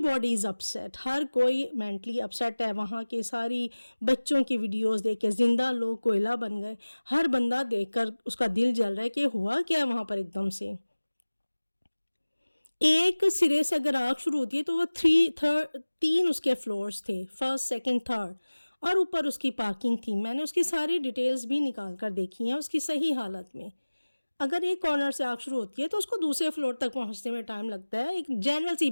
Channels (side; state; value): both; inverted; correlation -1.00